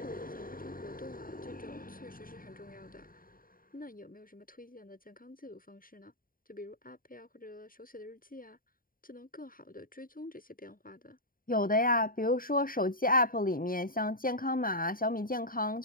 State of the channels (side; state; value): right; late; 0.41 ms